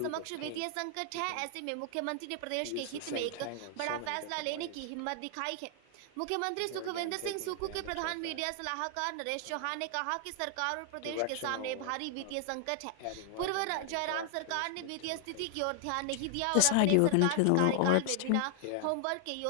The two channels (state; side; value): different; both; correlation 0.00